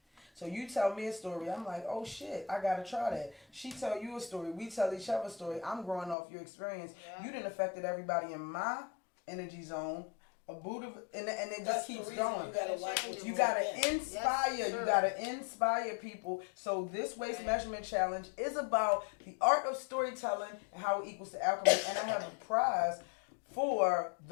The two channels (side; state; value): right; drops out; at 6.2 s